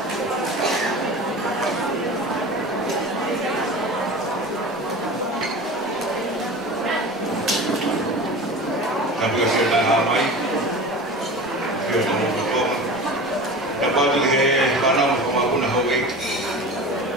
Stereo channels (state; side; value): normal; both; correlation 0.34